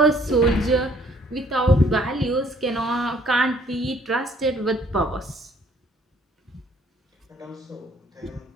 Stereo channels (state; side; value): normal; both; correlation 0.61